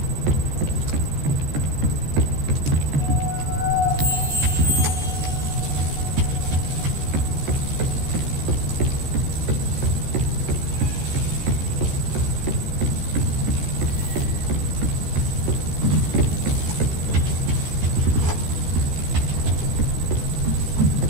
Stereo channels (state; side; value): late; left; 14 ms